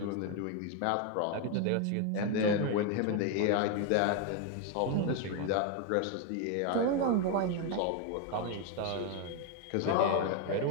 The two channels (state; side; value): different; both; correlation 0.01